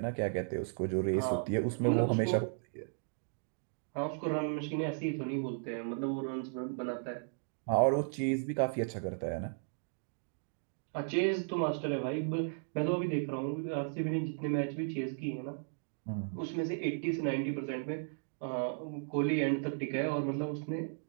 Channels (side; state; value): left; silent; digital silence